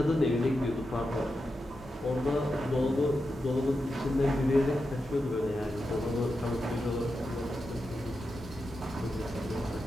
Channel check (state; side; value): normal; both; correlation 0.89